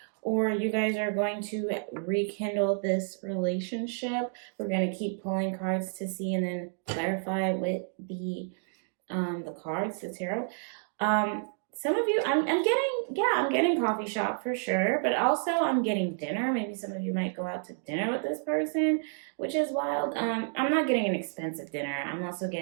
or you guys are going to rekindle this relationship, we're going to keep pulling cards to see and then clarify with the cards, the tarot. Some of you, I'm getting coffee shop for sure, but also I'm getting dinner. Maybe some of you might go out to dinner with this person, which is wild. I'm not getting an expensive dinner. I'm also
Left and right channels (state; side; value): silent; left; digital silence